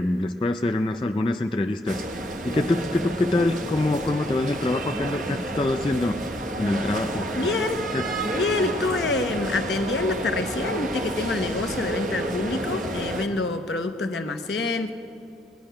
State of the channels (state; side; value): normal; both; correlation 0.67